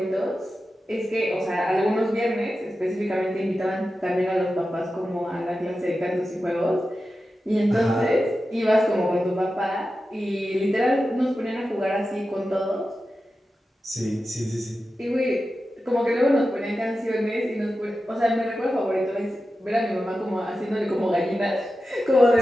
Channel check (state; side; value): normal; both; correlation 0.92